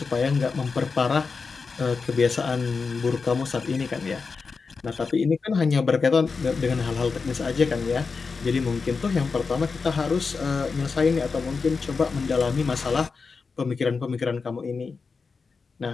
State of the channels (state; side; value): quieter; right; 4.8 dB